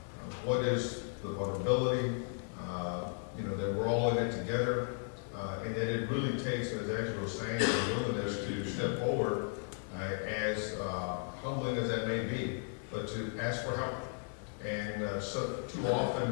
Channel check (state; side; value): silent; right; 54 dB below the other